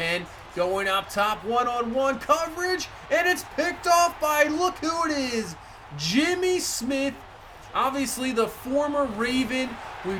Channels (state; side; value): identical; both; correlation 1.00